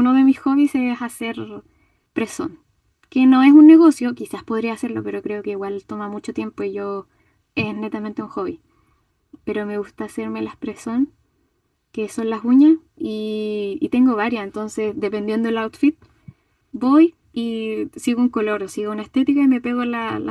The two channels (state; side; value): identical; both; correlation 1.00